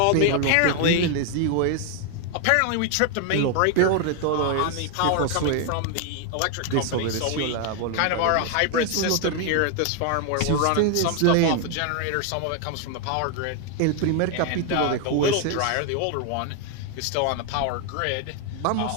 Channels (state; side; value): different; both; correlation 0.00